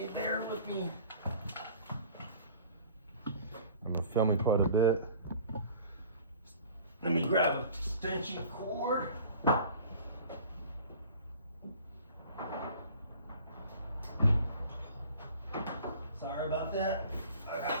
me. I'm gonna film it quite a bit. Let me grab an extension cord. Sorry about that. I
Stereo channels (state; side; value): inverted; both; correlation -0.47